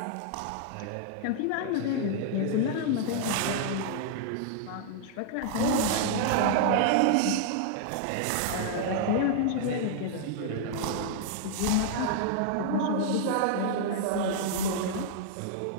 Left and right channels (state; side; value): different; both; correlation -0.01